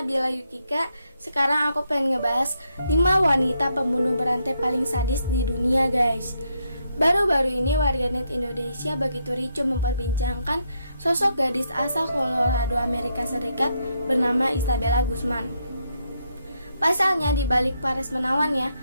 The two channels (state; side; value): inverted; both; correlation -0.78